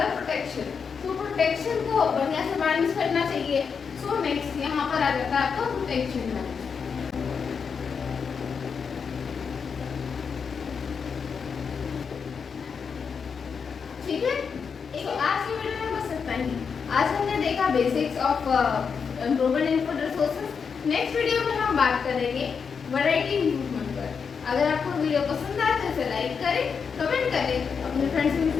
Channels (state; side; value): quieter; right; 6.1 dB